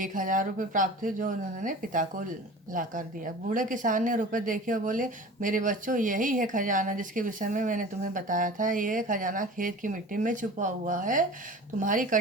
रुपये प्राप्त हुए जो उन्होंने पिता को ला कर दिया। बूढ़े किसान ने रुपए देखे और बोले, मेरे बच्चों, यही है खजाना जिसके विषय में मैंने तुम्हें बताया था। ये खजाना खेत की मिट्टी में छुपा हुआ है, तुम्हारी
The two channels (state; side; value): normal; both; correlation 0.39